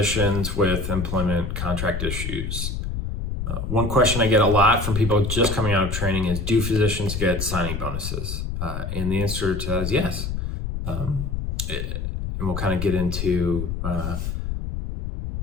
with employment contract issues. One question I get a lot from people just coming out of training is, do physicians get signing bonuses? And the answer to that is yes. And we'll kind of get into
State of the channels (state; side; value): noise; left; rumble, 4 dB below the sound